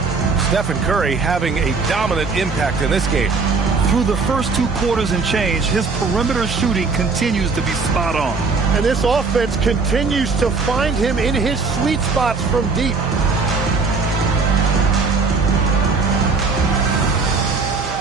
Stephen Curry having a dominant impact in this game. Through the first two quarters and change, his perimeter shooting continues to be spot on. And this offense continues to find him in his sweet spots from deep.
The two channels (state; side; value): quieter; left; 4.4 dB